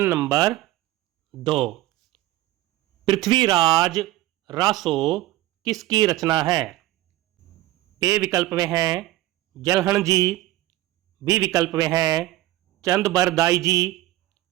number 2। Prithviraj Raso किसकी रचना है? ए विकल्प में है जलहण जी, बी विकल्प में है चंदबरदाई जी,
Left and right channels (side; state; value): left; quieter; 16.5 dB